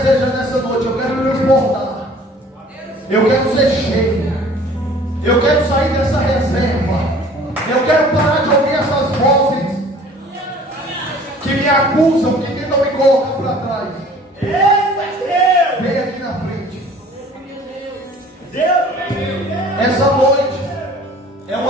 nessa noite, eu quero transportar. Eu quero ser cheio. Eu quero sair dessa reserva. Eu quero parar de ouvir essas vozes que me acusam, que tentam me colocar para trás. Vem aqui na frente. Essa noite é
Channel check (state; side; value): normal; both; correlation 0.50